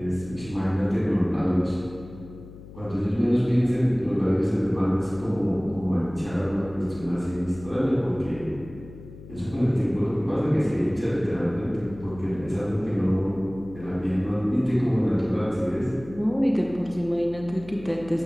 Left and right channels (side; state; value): left; noise; hum, 16 dB below the sound